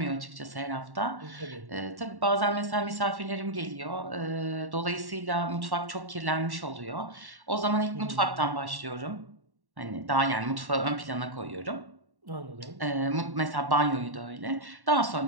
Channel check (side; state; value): left; late; 1.1 ms